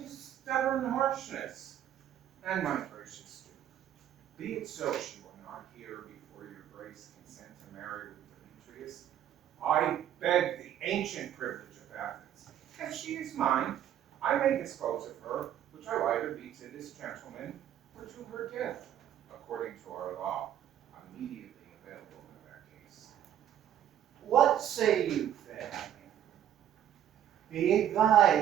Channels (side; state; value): left; quieter; 10.7 dB